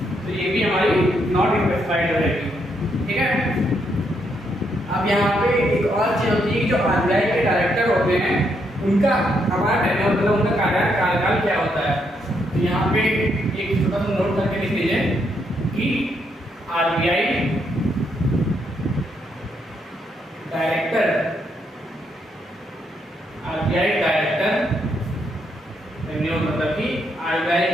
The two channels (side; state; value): both; normal; correlation 0.76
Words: तो ये भी हमारी नॉट स्पेसिफाइड रहेगी। ठीक है, अब यहाँ पे एक और चीज होती है कि जो आरबीआई के डायरेक्टर होते हैं उनका हमारा टेन्योर, मतलब उनका कार्यकाल क्या होता है। तो यहाँ पे एक छोटा सा नोट करके लिख लीजिए कि आरबीआई डायरेक्टर टेन्योर, मतलब कि आरबीआई